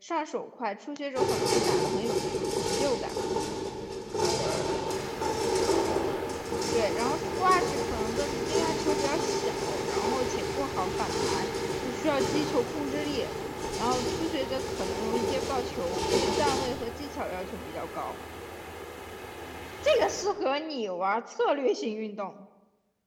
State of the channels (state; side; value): identical; both; correlation 1.00